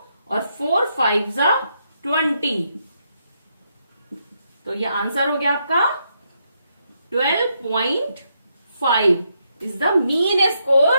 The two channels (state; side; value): inverted; both; correlation -0.78